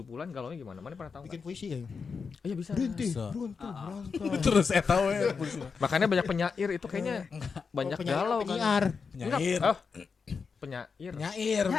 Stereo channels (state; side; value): quieter; right; 5.4 dB